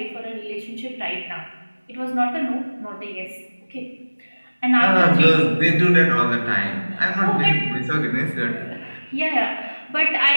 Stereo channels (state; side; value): inverted; both; correlation -1.00